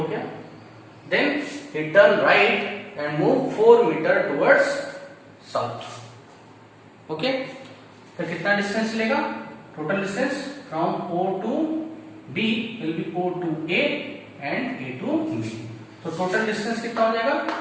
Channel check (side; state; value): both; identical; correlation 1.00